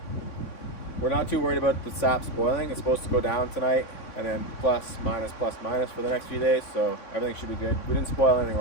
we're not too worried about the sap spoiling. It's supposed to go down tonight and then plus minus for the next few days, so everything should be good. We didn't spoil anything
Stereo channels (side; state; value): right; late; 3.6 ms